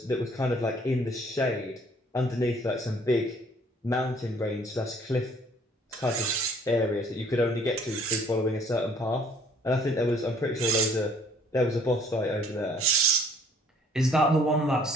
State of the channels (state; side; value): normal; both; correlation 0.58